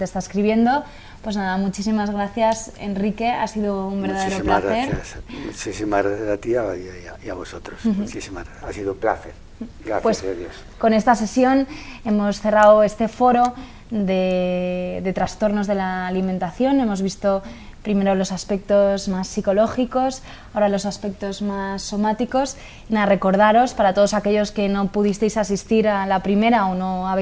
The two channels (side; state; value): both; identical; correlation 1.00